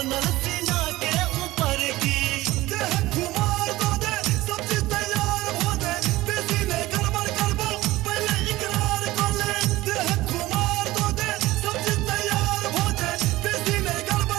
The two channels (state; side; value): quieter; left; 18.0 dB